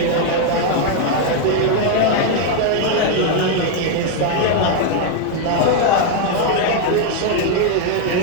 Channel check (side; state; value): both; different; correlation 0.00